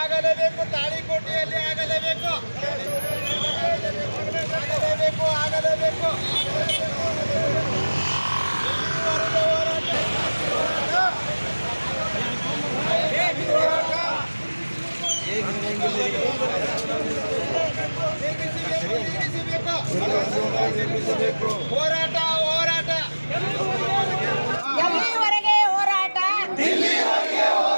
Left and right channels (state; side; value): inverted; both; correlation -1.00